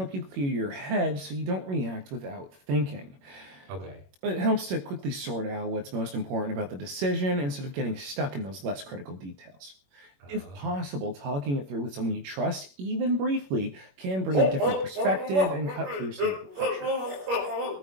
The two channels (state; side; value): late; left; 21 ms